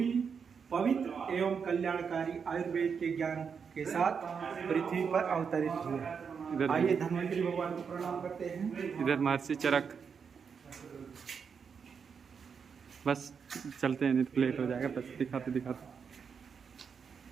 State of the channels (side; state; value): left; quieter; 6.3 dB